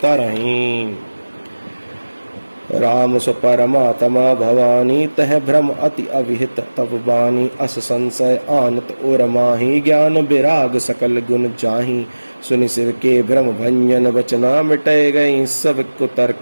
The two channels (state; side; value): inverted; both; correlation -1.00